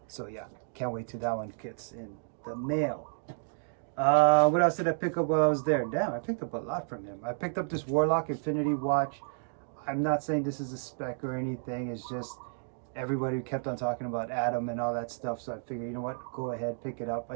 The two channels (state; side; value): silent; left; digital silence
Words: so yeah, can't wait till that one gets in the mail. What else did I pick up while I was there? Damn, I picked up a lot from him. I picked up this Warlock Infinity watch. I'm not saying this is a spec or anything. It's just everybody kept on talking about Adam and all that stuff, so I figured, you know what, go ahead, pick it up.